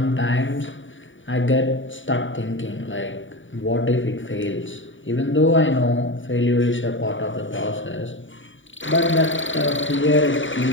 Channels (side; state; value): right; late; 0.56 ms